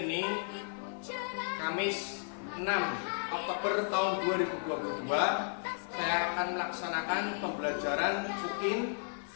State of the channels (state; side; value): silent; right; 55 dB below the other